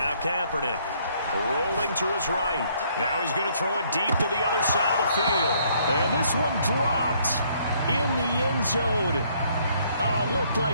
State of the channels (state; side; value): inverted; both; correlation -0.66